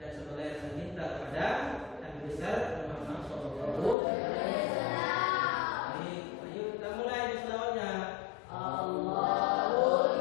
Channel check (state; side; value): drops out; right; at 4.0 s